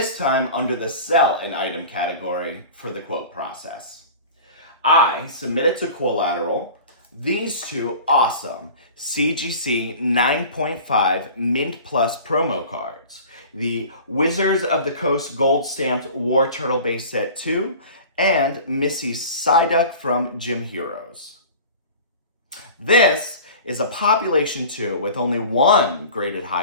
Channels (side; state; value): both; inverted; correlation -0.40